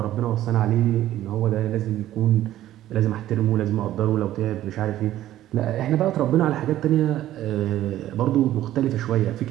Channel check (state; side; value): quieter; left; 13.5 dB